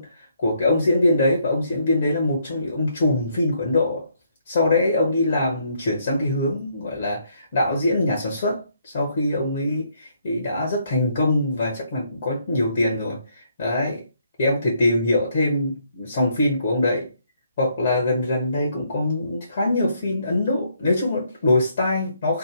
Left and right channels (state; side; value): inverted; both; correlation -0.72